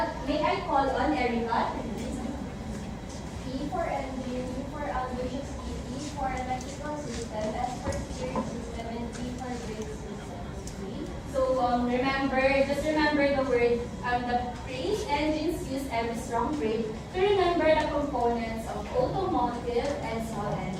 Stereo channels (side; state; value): both; identical; correlation 1.00